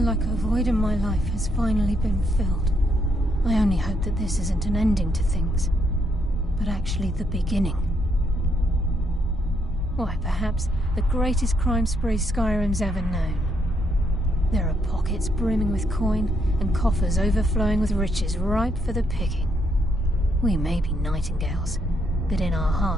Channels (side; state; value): both; normal; correlation 0.75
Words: a void in my life has finally been filled. I only hope that this isn't an ending to things, but actually the beginning. Why, perhaps the greatest crime spree Skyrim's ever known. There are pockets brimming with coin and coffers overflowing with riches ripe for the picking. We may be Nightingales, but in our